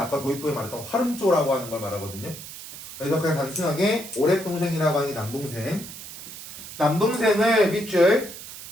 도입부에 말했던 활음조라고 하는 걸 말하거든요. 그래서 그냥 단순하게 오랩동생이라고 하는 게 남동생. 남동생을 밑줄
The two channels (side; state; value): right; noise; hiss, 13 dB below the sound